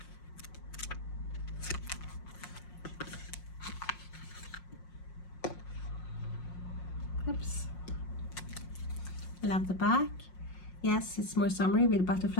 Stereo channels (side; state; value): right; late; 5.6 ms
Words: Oops. Love the back. Yes, it's more summery with